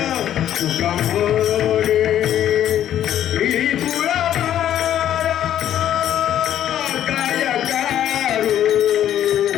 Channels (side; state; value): right; quieter; 11.0 dB